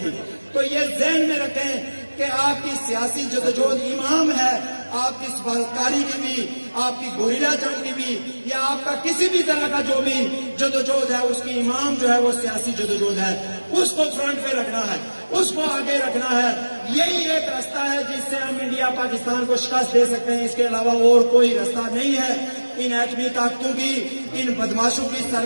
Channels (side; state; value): both; inverted; correlation -1.00